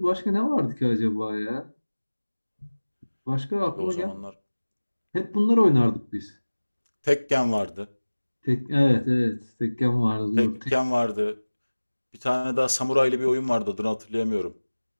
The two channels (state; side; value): inverted; both; correlation -1.00